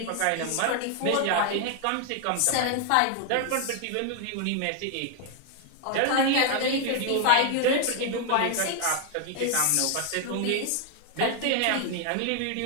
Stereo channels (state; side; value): different; both; correlation 0.00